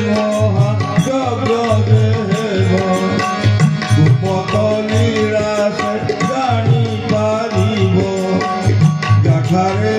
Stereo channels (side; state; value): both; identical; correlation 1.00